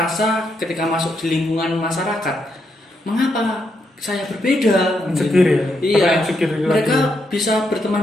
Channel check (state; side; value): normal; both; correlation 0.79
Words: ketika masuk di lingkungan masyarakat, mengapa saya berbeda? Insecure ya? Iya. Apa insecure itu Mereka lagi? bisa